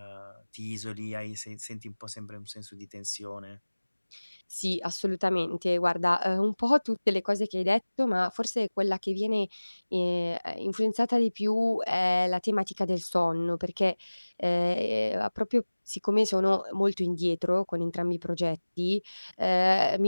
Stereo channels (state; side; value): inverted; both; correlation -1.00